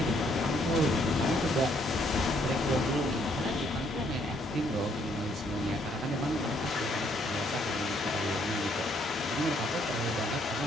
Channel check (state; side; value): normal; both; correlation 0.68